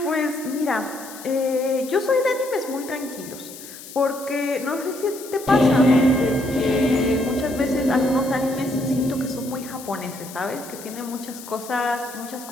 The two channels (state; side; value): noise; left; hiss, 15 dB below the sound